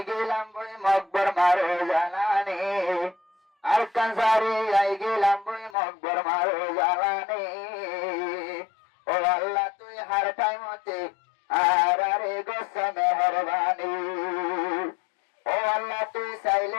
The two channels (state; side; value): drops out; right; at 5.8 s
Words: গেলাম বই মকবর মারো জানানি আর কানসারি আই গেলাম বই মকবর মারো জানানি ও আল্লাহ তুই হার টাইমতে আর আরে গোসা মেহরবানি ও আল্লাহ তুই